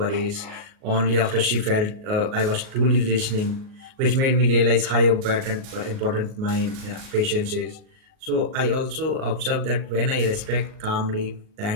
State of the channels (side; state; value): left; late; 38 ms